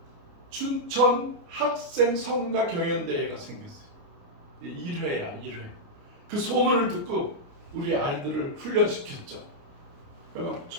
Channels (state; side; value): late; left; 29 ms